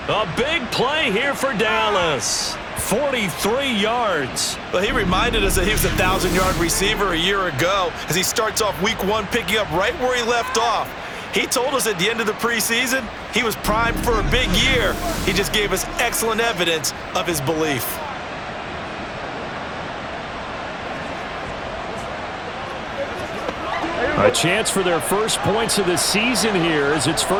A big play here for Dallas. 43 yards. Well, he reminded us that he was a 1,000-yard receiver a year ago as he starts off week 1 picking up right where he left off. He told us at the end of the preseason he was primed for a big year. He just gave us excellent evidence of his belief. A chance for their first points of the season here as it's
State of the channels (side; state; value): both; identical; correlation 1.00